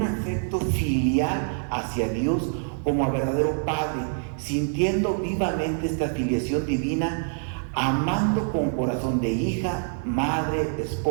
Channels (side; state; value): left; silent; 61 dB below the other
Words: afecto filial hacia Dios como a verdadero Padre, sintiendo vivamente esta filiación divina, amando con corazón de hija, madre,